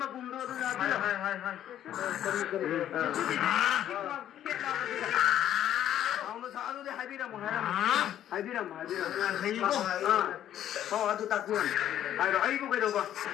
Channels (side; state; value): right; quieter; 11.3 dB